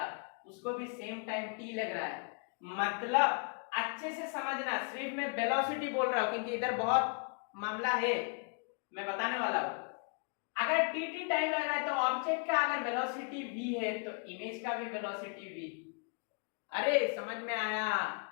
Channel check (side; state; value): right; quieter; 38.1 dB